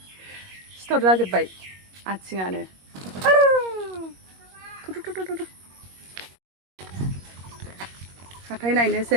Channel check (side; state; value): left; late; 21 ms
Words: सिथर जाजोब्बाय आथिङानो. हाथाय